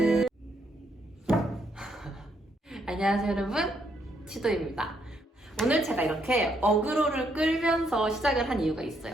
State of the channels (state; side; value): normal; both; correlation 0.74